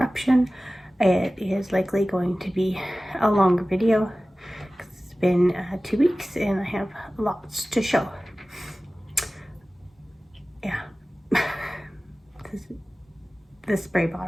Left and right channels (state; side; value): normal; both; correlation 0.97